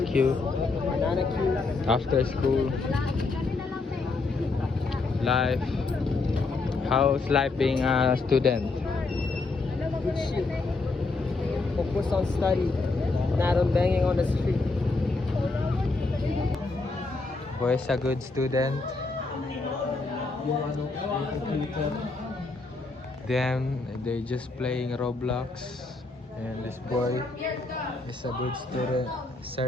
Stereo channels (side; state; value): right; quieter; 3.6 dB